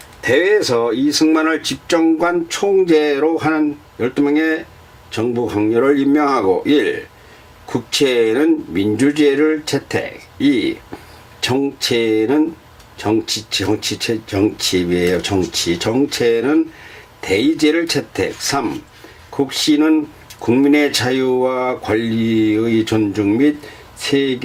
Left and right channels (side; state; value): both; identical; correlation 1.00